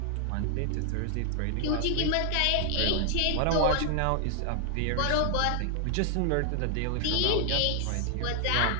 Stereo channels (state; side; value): different; both; correlation 0.00